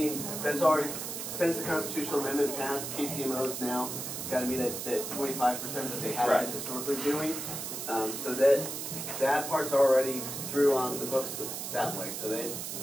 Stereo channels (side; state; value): right; noise; hiss, 5 dB below the sound